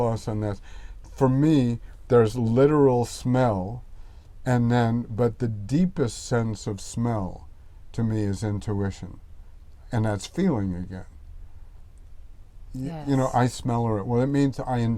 on this. For me, there's literal smell, but the deepest sense of smell to me is intuition. And that's feeling again. Yes. I smell it. Well, it means I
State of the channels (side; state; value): both; identical; correlation 1.00